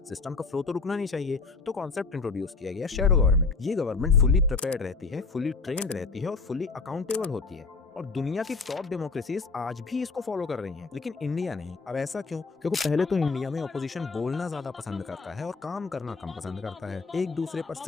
सिस्टम का फ्लो तो रुकना नहीं चाहिए, तो कॉन्सेप्ट इंट्रोड्यूस किया गया शैडो गवर्नमेंट। ये गवर्नमेंट फुली प्रिपेयर्ड रहती है, फुली ट्रेंड रहती है और फुली अकाउंटेबल होती है। और दुनिया की टॉप डेमोक्रेसीज आज भी इसको फॉलो कर रही हैं, लेकिन इंडिया नहीं। अब ऐसा क्यों? क्योंकि पहले तो इंडिया में ऑपोजिशन बोलना ज्यादा पसंद करता है और काम करना कम पसंद करता है। एक दूसरे पर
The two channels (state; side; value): quieter; right; 4.2 dB